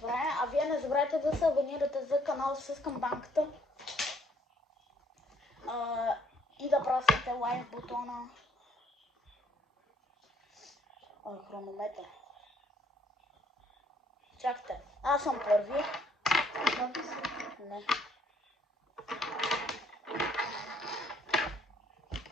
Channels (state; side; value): normal; both; correlation 0.65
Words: правим. А вие не забравяйте да се абонирате за канала с камбанката. И да прасвате лайк бутона. Хронометър. Чакайте. Аз съм първи. Не.